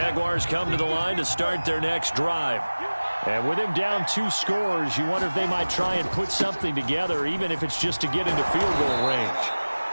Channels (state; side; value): inverted; both; correlation -1.00